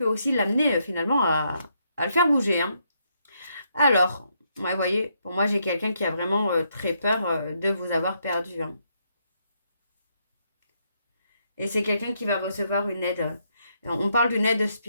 aussi l'amener finalement à le faire bouger. Hein. Alors, ouais, vous voyez, pour moi, j'ai quelqu'un qui a vraiment très peur de vous avoir perdu. Hein. Et c'est quelqu'un qui va recevoir une aide. On parle d'une aide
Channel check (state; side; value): inverted; both; correlation -0.76